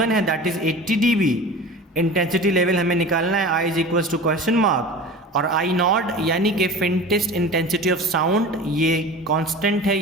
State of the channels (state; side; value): normal; both; correlation 0.36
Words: है that is 80 dB, intensity level हमें निकालना है i is equals to question mark, और आई नॉट यानी कि फेंटेस्ट इंटेंसिटी ऑफ साउंड ये कांस्टेंट है,